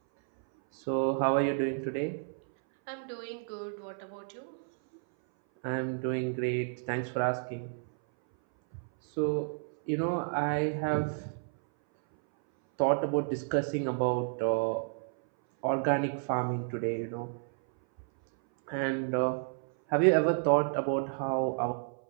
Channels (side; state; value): left; silent; 57 dB below the other